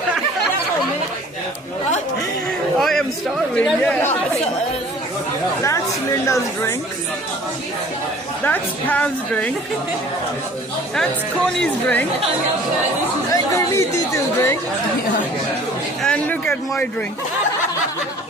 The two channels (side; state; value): both; normal; correlation 0.50